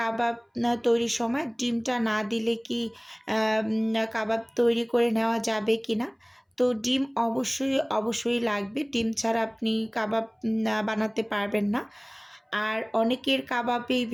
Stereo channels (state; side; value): identical; both; correlation 1.00